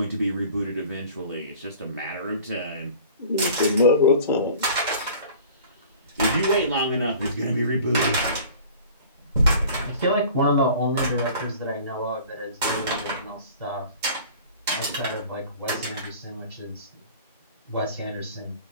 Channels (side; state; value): both; inverted; correlation -0.45